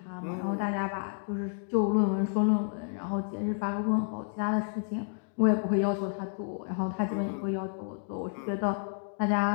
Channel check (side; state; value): right; silent; digital silence